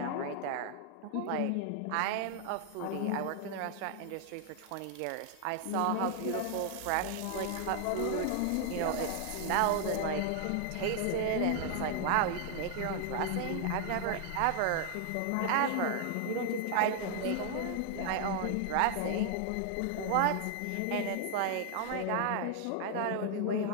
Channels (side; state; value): both; different; correlation 0.00